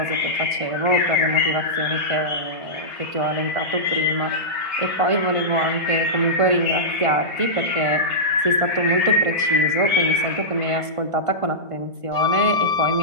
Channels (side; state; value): left; late; 1.5 ms